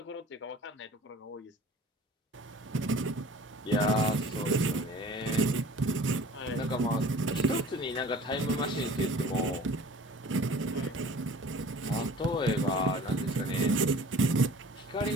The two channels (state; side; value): normal; both; correlation 0.46